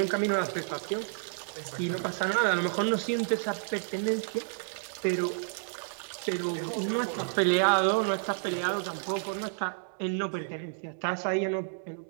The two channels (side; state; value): left; silent; digital silence